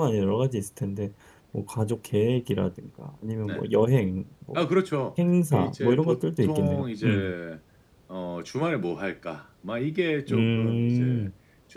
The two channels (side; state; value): both; identical; correlation 1.00